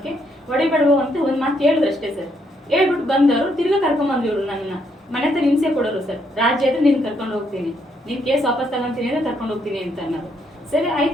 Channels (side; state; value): both; normal; correlation 0.74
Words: ಹೊಡಿಬೇಡವು ಅಂತ ಒಂದ್ ಮಾತು ಹೇಳಿದ್ರು ಅಷ್ಟೇ ಸರ್. ಹೇಳ್ಬಿಟ್ಟು ಬಂದವರು ತಿರ್ಗಾ ಕರ್ಕೊಂಡ್ಬಂದ್ರು ಇವ್ರು ನನ್ನ ಮನೆ ಹತ್ರ ಹಿಂಸೆ ಕೊಡೋರು ಸರ್. ರಾಜ್ಯ ಆದ್ರೆ ನೀನ್ ಕರ್ಕೊಂಡು ಹೋಗ್ತೀನಿ, ನೀನ್ ಕೇಸ್ ವಾಪಸ್ ತಗೊಂತೀನಿ ಅಂದ್ರೆ ಕರ್ಕೊಂಡು ಹೋಗ್ತೀನಿ ಅಂತ ಅನ್ನೋದು. ಸರಿ